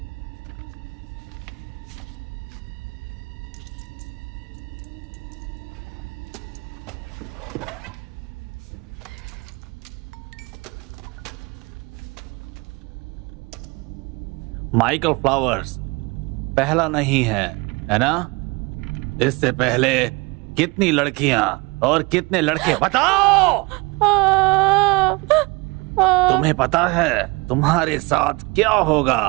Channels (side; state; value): left; quieter; 26.3 dB